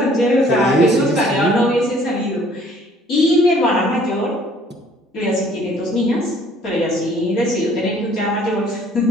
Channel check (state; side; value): normal; both; correlation 0.57